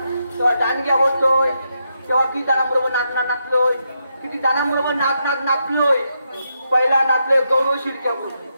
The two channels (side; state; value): both; inverted; correlation -0.82